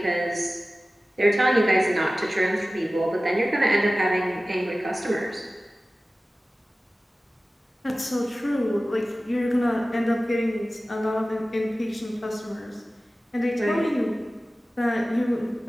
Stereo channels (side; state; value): both; normal; correlation 0.96